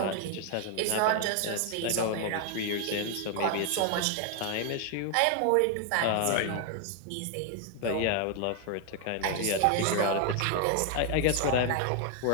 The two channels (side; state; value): both; different; correlation 0.00